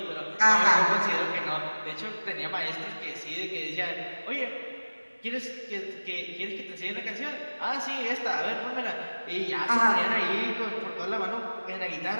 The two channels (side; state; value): both; inverted; correlation -1.00